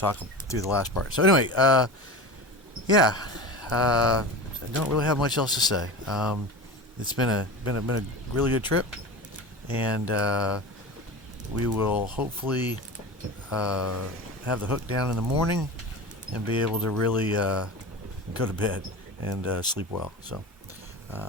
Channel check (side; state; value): both; normal; correlation 0.29